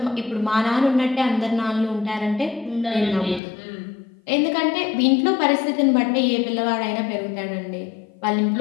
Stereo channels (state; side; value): drops out; right; at 3.4 s